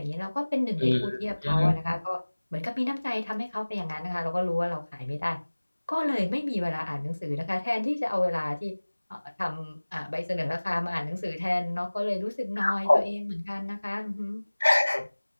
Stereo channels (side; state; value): both; inverted; correlation -1.00